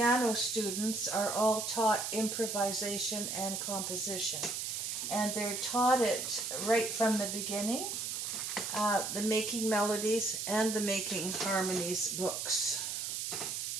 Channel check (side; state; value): right; noise; hiss, 3 dB below the sound